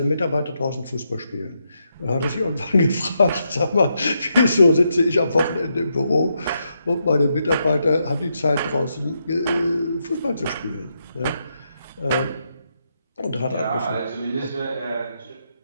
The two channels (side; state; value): both; inverted; correlation -0.81